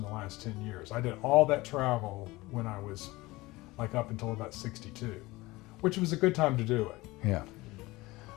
the last 10 years. I did all that travel when I was up until about 62, which was a good time to do it. Yeah.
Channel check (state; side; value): quieter; right; 20.7 dB